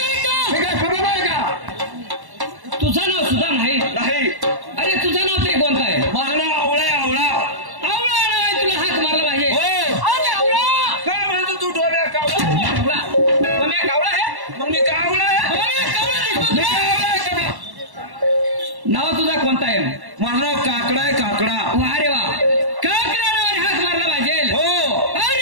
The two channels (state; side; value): late; left; 1.1 ms